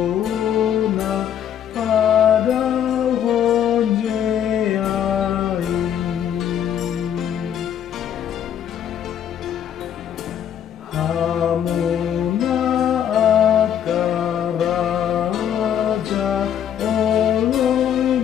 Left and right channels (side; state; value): right; quieter; 9.5 dB